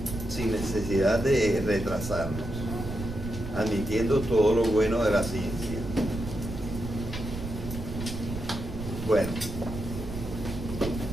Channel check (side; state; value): right; noise; rumble, 9 dB below the sound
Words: sin necesidad de retrasarnos, admitiendo todo lo bueno de la ciencia. Bueno,